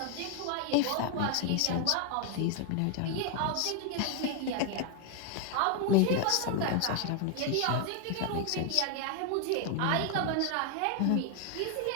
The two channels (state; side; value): different; both; correlation 0.00